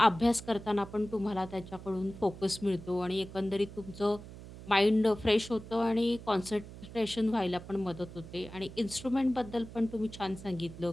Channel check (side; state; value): right; noise; hum, 14 dB below the sound